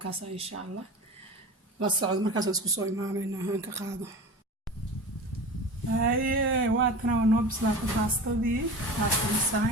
kaasa insha Allah la socod markaas isku soo imaanayna aan ka qaado waa tan waa noo bislaatay baastadii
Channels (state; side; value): normal; both; correlation 0.33